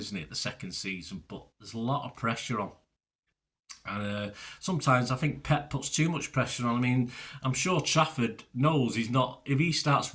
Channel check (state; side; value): identical; both; correlation 1.00